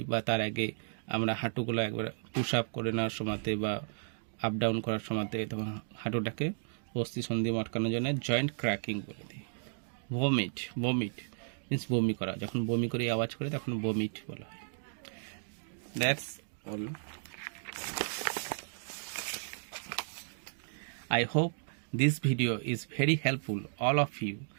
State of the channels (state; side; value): silent; left; digital silence